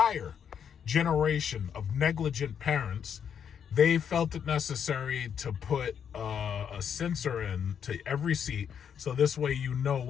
generation of negligent parents, they felt it necessary to put a sensor in to every seat, so this way you know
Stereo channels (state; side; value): quieter; right; 7.9 dB